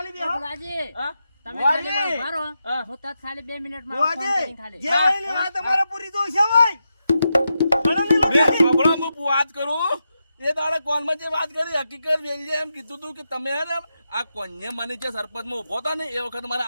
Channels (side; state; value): both; inverted; correlation -0.87